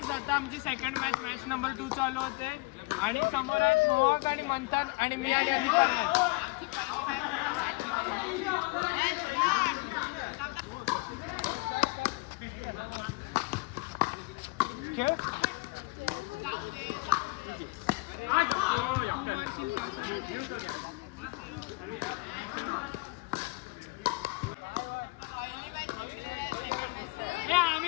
आता आमची सेकंड मॅच नंबर 2 चालू होते. आणि समोर आहेत मोहक आणि मंथन आणि मी आणि अधिकारी आहेत. खेळ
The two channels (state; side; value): quieter; right; 25.4 dB